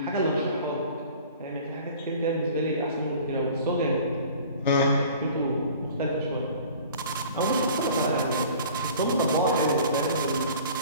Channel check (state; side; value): inverted; both; correlation -0.46